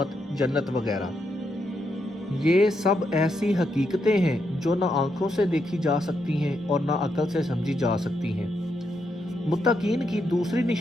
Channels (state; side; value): normal; both; correlation 0.81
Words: جنت وغیرہ۔ یہ سب ایسی حقیقتیں ہیں جو نہ آنکھوں سے دیکھی جا سکتی ہیں اور نہ عقل سے سمجھی جا سکتی ہیں۔ متقین کی دوسری